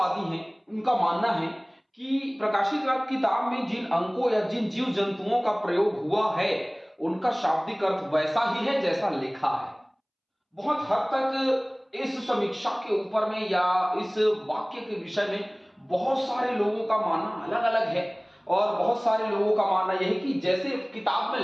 हैं उनका मानना है कि प्रकाशित वाक्य किताब में जिन अंकों या जिन जीव जंतुओं का प्रयोग हुआ है उनका शाब्दिक अर्थ वैसा ही है जैसा लिखा है। बहुत हद तक इस समीक्षा के ऊपर में या इस वाक्य के विषय में बहुत सारे लोगों का मानना अलग अलग है और बहुत सारे लोगों का मानना यह है कि जैसे किताब में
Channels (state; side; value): identical; both; correlation 1.00